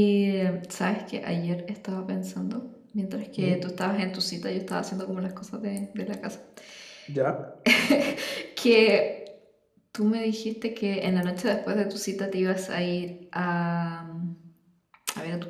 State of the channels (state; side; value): identical; both; correlation 1.00